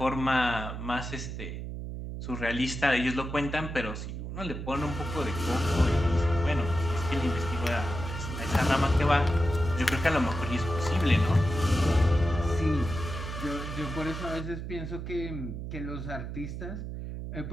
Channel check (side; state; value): right; noise; hum, 7 dB below the sound